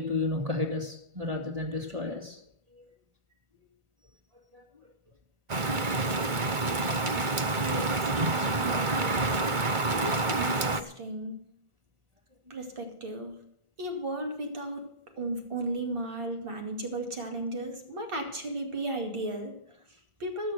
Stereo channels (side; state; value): left; late; 2.2 ms